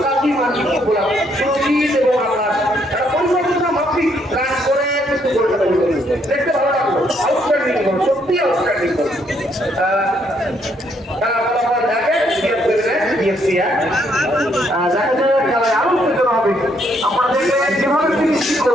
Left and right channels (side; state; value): both; normal; correlation 0.71